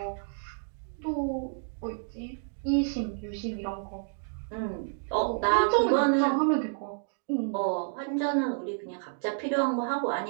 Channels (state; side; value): silent; left; digital silence